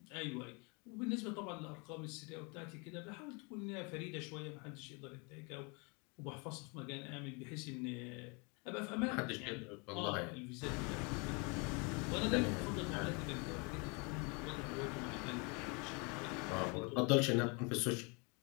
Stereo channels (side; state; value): right; quieter; 31.7 dB